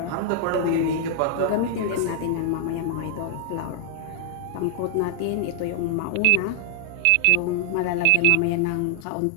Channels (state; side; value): different; both; correlation 0.00